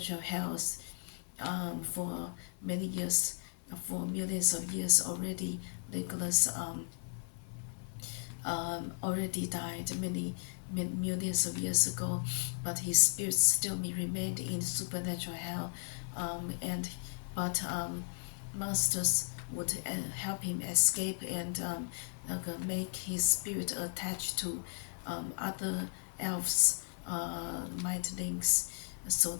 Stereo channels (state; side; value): silent; right; 54 dB below the other